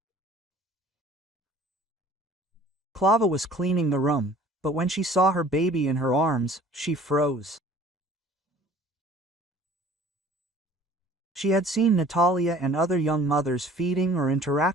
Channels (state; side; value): normal; both; correlation 0.50